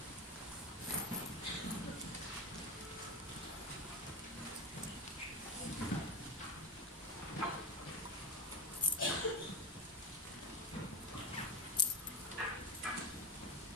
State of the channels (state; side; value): normal; both; correlation 0.18